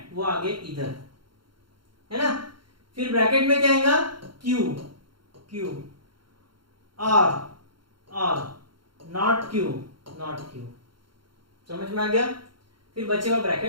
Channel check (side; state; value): left; late; 0.73 ms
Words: वो आगे इधर, है ना। फिर ब्रैकेट में क्या आएगा, Q और नॉट Q। समझ में आ गया। फिर बचेगा